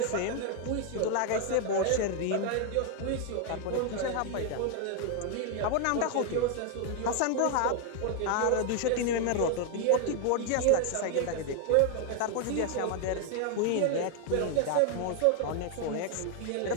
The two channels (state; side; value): different; both; correlation 0.00